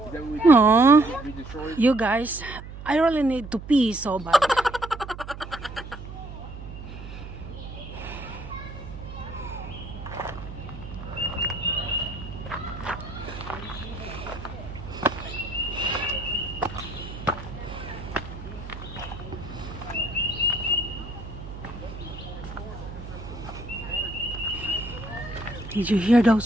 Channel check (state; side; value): noise; right; hum, 11 dB below the sound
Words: that what we Aww. we destroyed? You guys, I really need to pee so bad. Did you hear